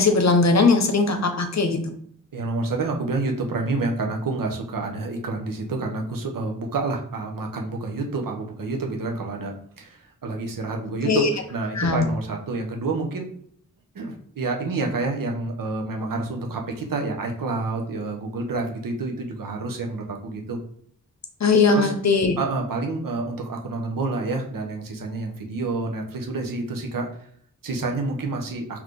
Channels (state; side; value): normal; both; correlation 0.30